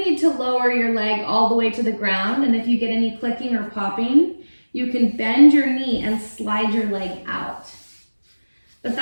to lower your leg all the way to the ground, and if you get any clicking or popping, you can bend your knee and slide your leg out. But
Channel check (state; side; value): inverted; both; correlation -1.00